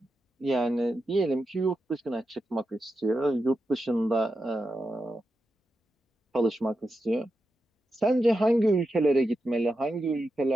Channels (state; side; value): normal; both; correlation 0.89